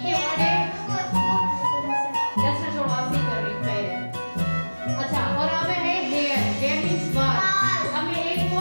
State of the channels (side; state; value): both; inverted; correlation -1.00